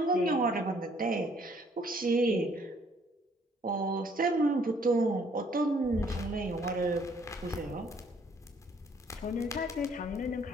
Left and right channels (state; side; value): normal; both; correlation 0.63